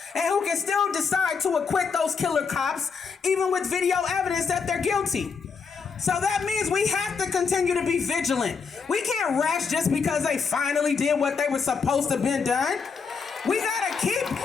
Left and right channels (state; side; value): quieter; right; 5.5 dB